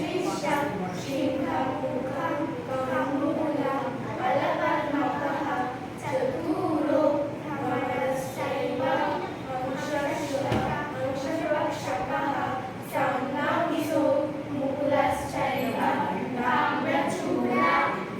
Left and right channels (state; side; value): identical; both; correlation 1.00